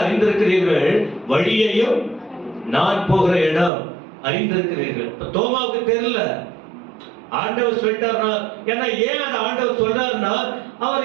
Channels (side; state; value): left; drops out; at 3.7 s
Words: அறிந்திருக்கிறீர்கள், வழியையும் நான் போகிற இடம் அறிந்திருக்கிறீர்கள். தோமாவுக்கு தெரியல, ஆண்டவர் சொல்லிட்டாருன்னா. ஏன்னா ஏன் அந்த ஆண்டவர் சொல்றாருன்னா,